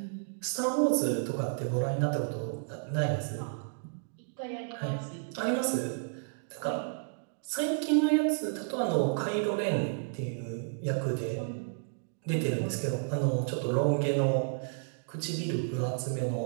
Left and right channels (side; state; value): left; silent; digital silence